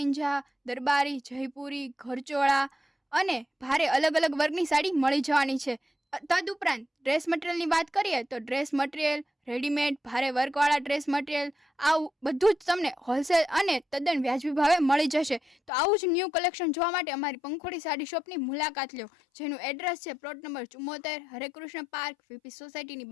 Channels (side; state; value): right; drops out; at 15.7 s